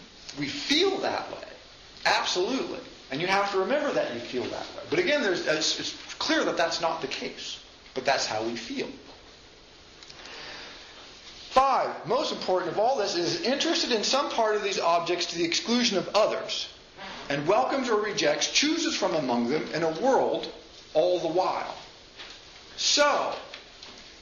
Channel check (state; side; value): identical; both; correlation 1.00